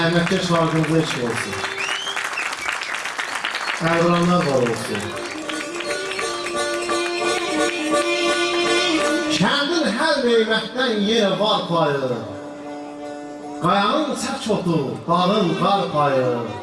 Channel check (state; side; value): identical; both; correlation 1.00